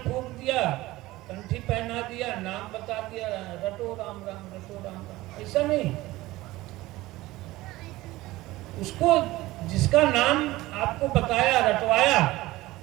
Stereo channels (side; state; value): left; quieter; 18.3 dB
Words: दिया, कंठी पहना दिया, नाम बता दिया, रटो राम राम, रटो राम राम, ऐसा नहीं। उसको जिसका नाम आपको बताया, रटवाया,